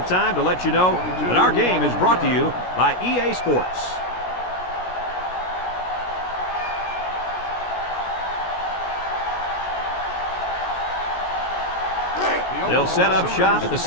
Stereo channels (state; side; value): late; right; 16 ms